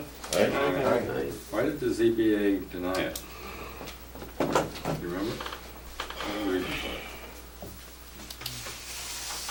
Aye. Why did the ZBA deny it? Do you remember? What was the reason for it?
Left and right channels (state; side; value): identical; both; correlation 1.00